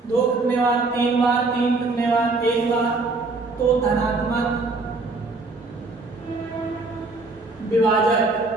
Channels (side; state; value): left; quieter; 3.6 dB